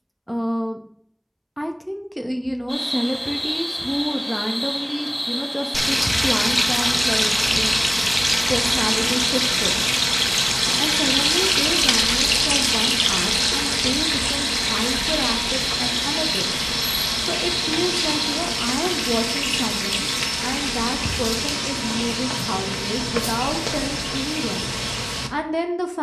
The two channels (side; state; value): both; identical; correlation 1.00